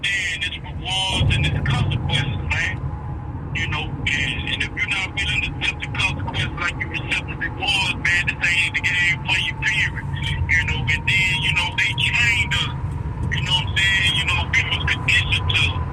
its rewards and its consequences, man. You know, and if you're not willing to accept the consequences like you accept the rewards, man, this ain't the game for you, period. You know, and then, you know, they trained us. You know what I'm saying? You know, we was conditioned to,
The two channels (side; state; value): both; identical; correlation 1.00